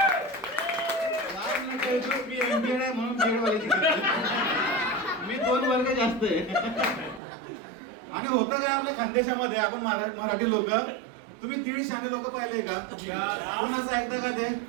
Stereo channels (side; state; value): left; drops out; at 7.2 s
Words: मी MPEd आहे म्हणून BEd वाल्याची मी 2 वर्ग जास्त आहे. आणि होतं काय आपल्या खानदेशामध्ये, आपण मराठी लोक, तुम्ही 1.5 शाणे लोक पाहिले का? कोणाचं ऐकतं का ते?